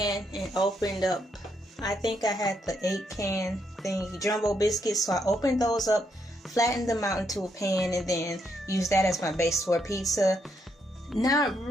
and opened up, I think I had the 8-can thing, jumbo biscuits. So I opened those up, flattened them out into a pan, and then used that as my base for pizza. Not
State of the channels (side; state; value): both; normal; correlation 0.77